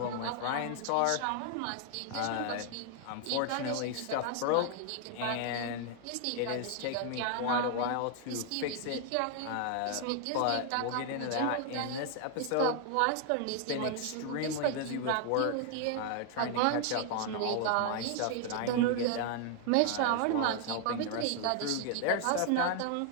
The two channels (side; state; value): both; different; correlation 0.00